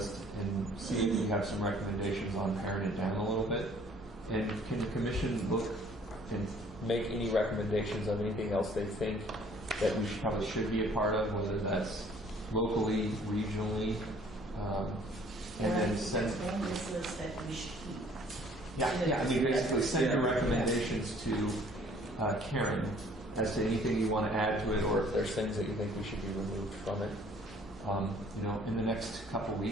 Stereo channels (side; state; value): both; normal; correlation 0.57